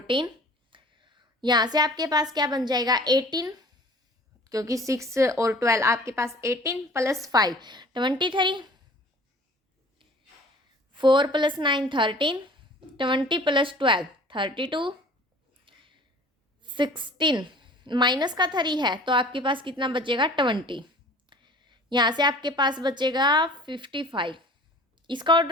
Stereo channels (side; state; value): both; normal; correlation 0.47